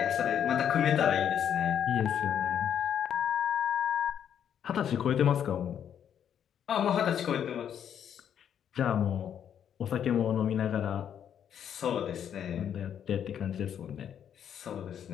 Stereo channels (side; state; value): right; quieter; 9.0 dB